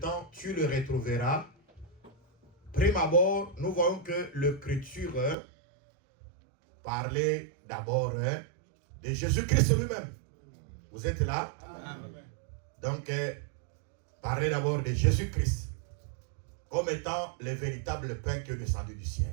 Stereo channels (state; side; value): drops out; left; at 5.4 s